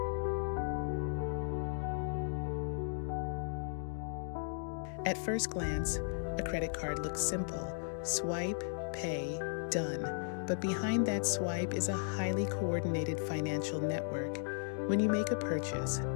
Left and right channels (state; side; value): silent; right; digital silence